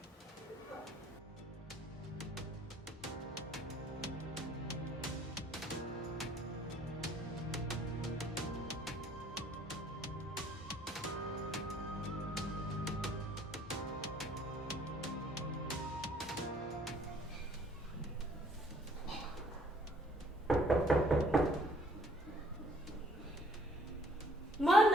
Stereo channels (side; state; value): both; normal; correlation 0.61